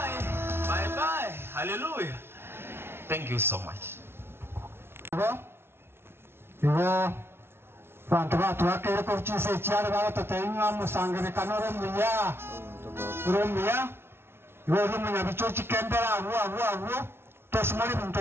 bye bye. Hallelujah. Thank you so much. Iwo bantu batwakire ko chise cyane batatayinwa musangire kanoro muya romiya iwo rumunya bichochi kembera awu tosmari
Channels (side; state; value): left; late; 0.12 ms